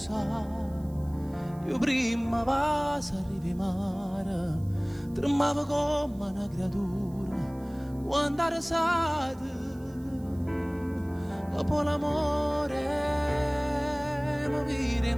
Io prima vas arrivi mare, tremavo come una creatura quando era sade. Dopo l'amore mi vire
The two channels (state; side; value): noise; right; hiss, 27 dB below the sound